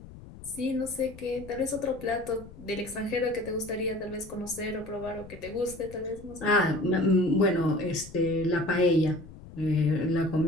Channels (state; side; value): noise; left; rumble, 17 dB below the sound